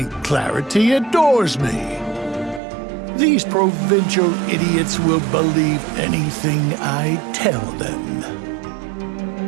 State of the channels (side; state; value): left; drops out; at 2.6 s